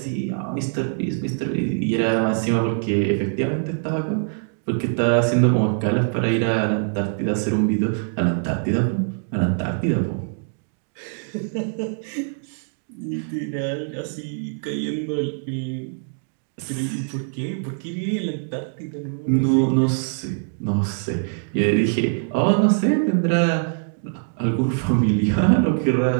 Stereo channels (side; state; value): left; silent; digital silence